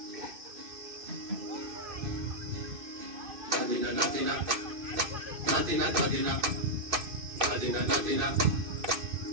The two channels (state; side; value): late; left; 2.5 ms